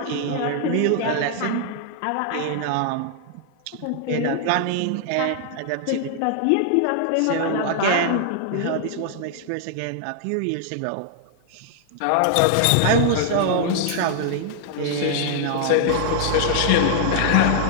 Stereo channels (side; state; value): both; different; correlation -0.01